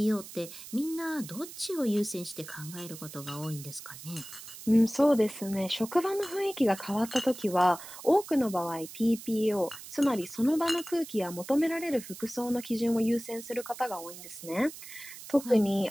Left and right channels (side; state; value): right; noise; hiss, 14 dB below the sound